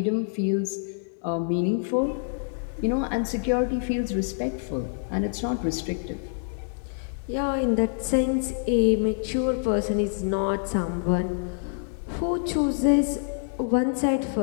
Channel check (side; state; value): right; silent; 61 dB below the other